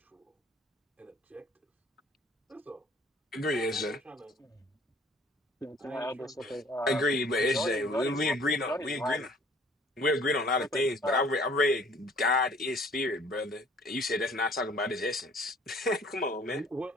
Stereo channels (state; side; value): normal; both; correlation 0.55